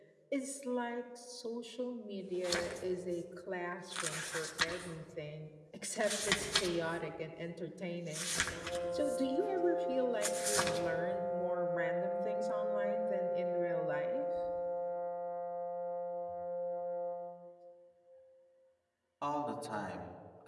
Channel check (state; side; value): identical; both; correlation 1.00